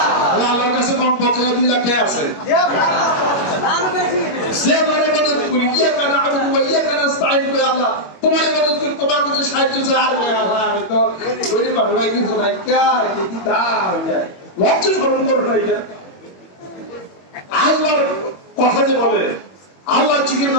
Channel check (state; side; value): late; right; 21 ms